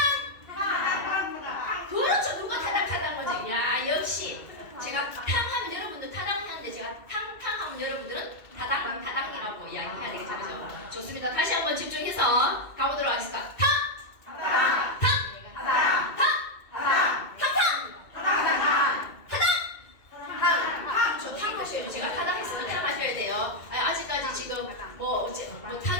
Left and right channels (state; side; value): late; right; 2.4 ms